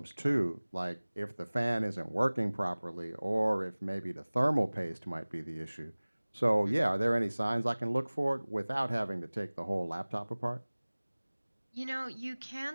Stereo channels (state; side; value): inverted; both; correlation -1.00